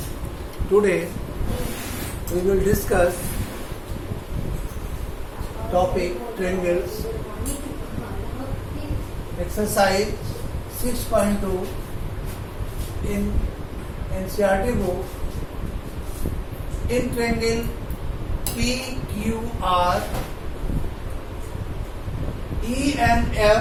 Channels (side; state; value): both; identical; correlation 1.00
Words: Today we will discuss topic triangles, exercise 6.2 in NCERT book. In triangle PQR, E and